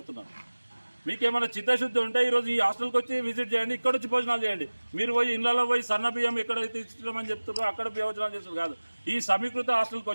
మీకేమైనా చిత్తశుద్ధి ఉంటే ఈరోజు ఈ హాస్టల్కి వచ్చి విజిట్ చేయండి, ఇక్కడ వచ్చి భోజనాలు చేయండి. మీరు పోయి ఇళ్లలో పోయి సన్న బియ్యం ఎక్కడైతే ఇస్తున్నామని చెప్తున్నారో అక్కడ భోజనాలు చేస్తారు కాదు. ఈ సమీకృత హాస్టల్కి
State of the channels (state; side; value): inverted; both; correlation -1.00